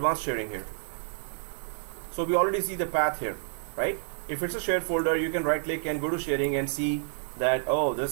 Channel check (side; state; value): left; silent; digital silence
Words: sharing here. So we already see the path here, right? If it's a shared folder, you can right click and go to sharing and see that, oh,